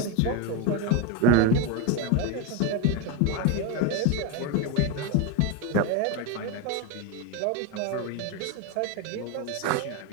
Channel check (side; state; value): both; different; correlation 0.03